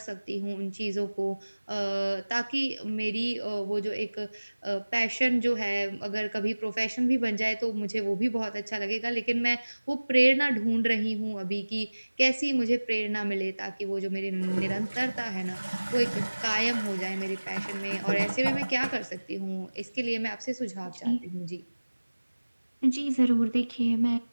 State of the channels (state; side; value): inverted; both; correlation -1.00